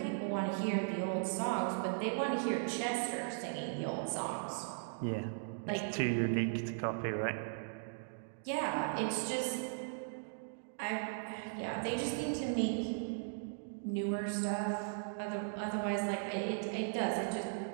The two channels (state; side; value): silent; left; digital silence